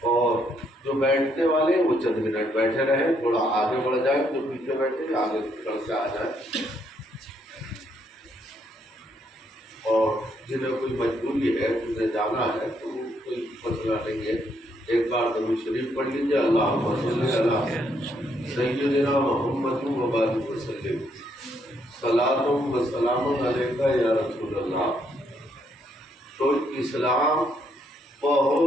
اور جو بیٹھنے والے ہیں وہ چند منٹ بیٹھے رہیں، تھوڑا آگے بڑھ جائیں، جو پیچھے بیٹھے آگے بڑھ کے آ جائیں. اور جنہیں کوئی مجبوری ہے جنہیں جانا ہے تو کوئی مسئلہ نہیں ہے. ایک بار درود شریف پڑھ لیجیے. اللہم صلی علی سیدنا محمد و بارک وسلم. صلاۃ و سلام علیک یا رسول اللہ. تو اسلام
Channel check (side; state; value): both; normal; correlation 0.73